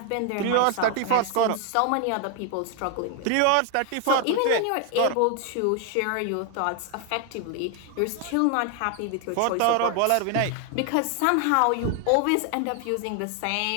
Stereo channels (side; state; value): both; different; correlation 0.00